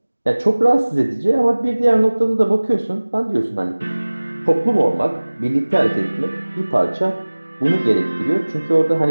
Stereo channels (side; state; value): both; inverted; correlation -1.00